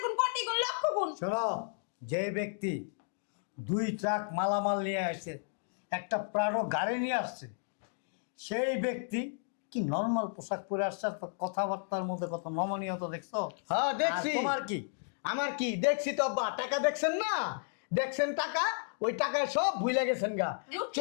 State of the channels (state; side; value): silent; right; digital silence